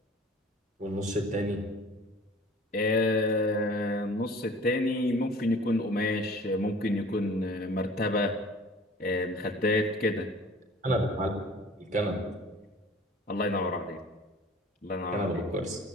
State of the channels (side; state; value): both; normal; correlation 0.47